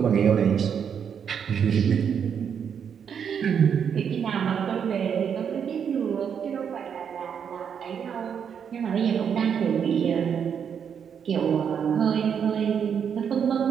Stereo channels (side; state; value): left; quieter; 7.6 dB